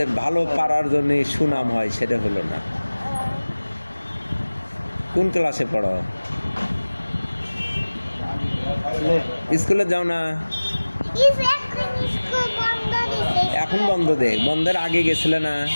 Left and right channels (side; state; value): both; inverted; correlation -1.00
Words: ভালো পারার জন্য সুনাম হয় সেটা হলো না কোন ক্লাসে পড়ো স্কুলে যাও না এখন বন্ধ দে বন্ধের আগে গেছিলে না